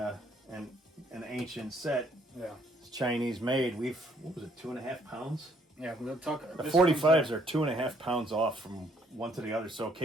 ancient set, Yeah. it's Chinese made. What was it, 2.5 pounds? Yeah, we'll talk. The 45s are 2.5 pounds off from one to the other, so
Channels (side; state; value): both; normal; correlation 0.66